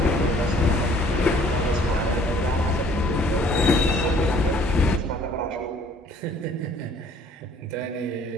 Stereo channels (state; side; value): normal; both; correlation 0.57